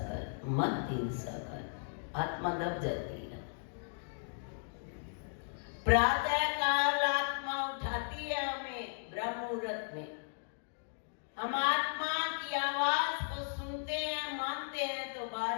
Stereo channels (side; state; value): right; silent; digital silence